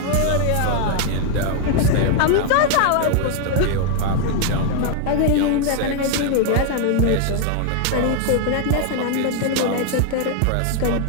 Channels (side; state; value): both; different; correlation 0.00